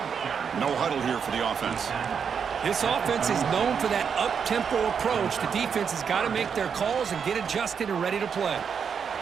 No huddle here for the offense. This offense is known for that up-tempo approach. The defense has got to make their calls and get adjusted and ready to play.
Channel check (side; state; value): left; quieter; 6.8 dB